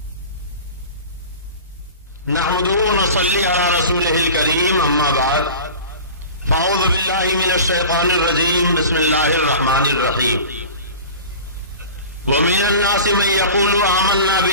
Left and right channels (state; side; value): inverted; both; correlation -0.37